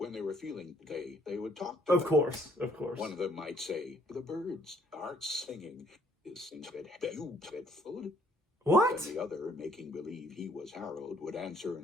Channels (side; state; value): both; normal; correlation 0.64